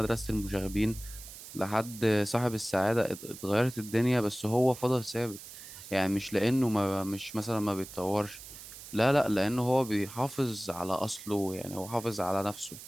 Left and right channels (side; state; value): right; noise; hiss, 14 dB below the sound